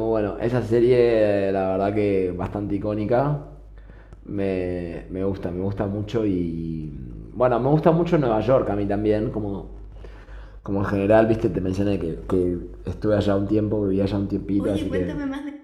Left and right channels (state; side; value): identical; both; correlation 1.00